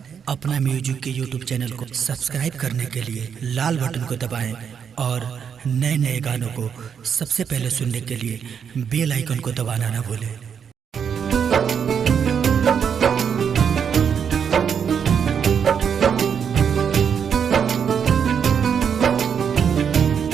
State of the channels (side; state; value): left; quieter; 7.4 dB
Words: अपना म्यूजिक के यूट्यूब चैनल को सब्सक्राइब करने के लिए लाल बटन को दबाएं और नए नए गानों को सबसे पहले सुनने के लिए बेल आइकन को दबाना ना भूलें।